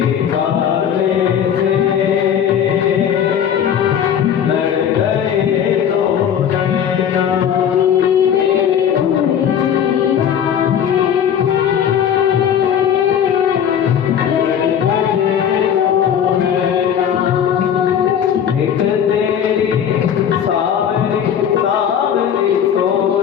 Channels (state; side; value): quieter; right; 8.8 dB